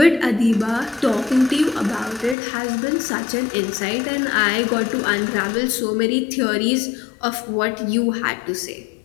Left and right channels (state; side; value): drops out; right; at 2.4 s